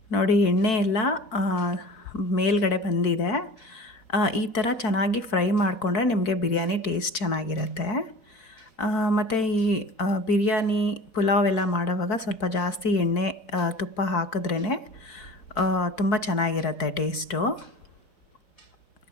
ನೋಡಿ, ಎಣ್ಣೆ ಎಲ್ಲ ಮೇಲ್ಗಡೆ ಬಂದಿದೆ. ಈ ಥರ ಚೆನ್ನಾಗಿ ಫ್ರೈ ಮಾಡಿಕೊಂಡ್ರೆ ನಿಮಗೆ ಬಿರಿಯಾನಿ ಟೇಸ್ಟ್ ಚೆನ್ನಾಗಿರುತ್ತೆ. ಮತ್ತು ಈ ಬಿರಿಯಾನಿ ಪುಲಾವ್ ಎಲ್ಲ ಮಾಡೋವಾಗ ಸ್ವಲ್ಪ ಜಾಸ್ತಿ ಎಣ್ಣೆ ತುಪ್ಪ ಹಾಕಿದ್ರೇ ತುಂಬ ಚೆನ್ನಾಗಿರುತ್ತೆ ಟೇಸ್ಟು.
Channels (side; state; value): right; late; 4.5 ms